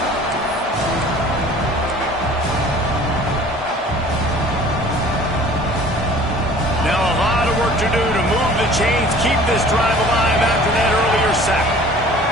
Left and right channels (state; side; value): normal; both; correlation 0.48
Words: Now a lot of work to do to move the chains, keep this drive alive after that earlier sack.